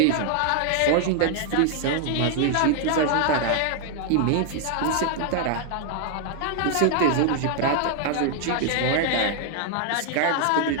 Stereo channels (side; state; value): both; different; correlation 0.00